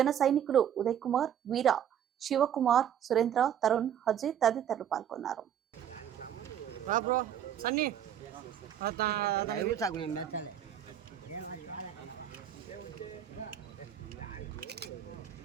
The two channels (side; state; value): left; quieter; 9.7 dB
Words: సైనికులు ఉదయ్ కుమార్, వీర, శివకుమార్, సురేంద్ర, తరుణ్, హజీ తదితరులు పాల్గొన్నారు.